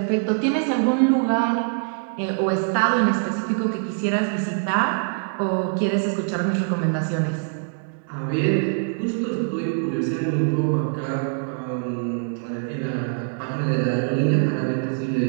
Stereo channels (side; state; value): left; silent; 63 dB below the other